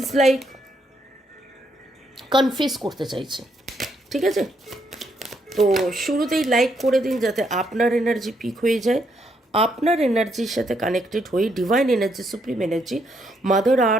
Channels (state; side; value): normal; both; correlation 0.75